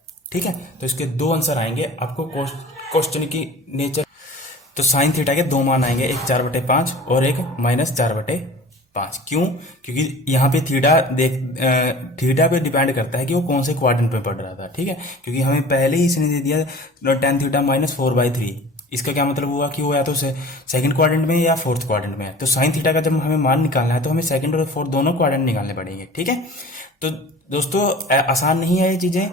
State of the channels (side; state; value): both; normal; correlation 0.42